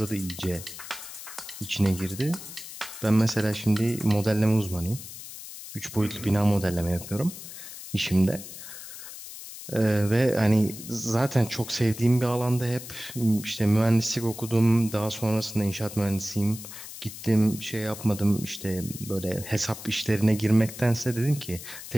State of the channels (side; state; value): left; noise; hiss, 12 dB below the sound